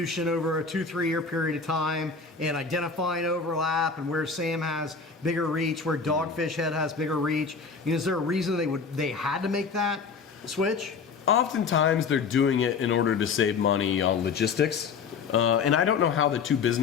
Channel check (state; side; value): quieter; right; 5.2 dB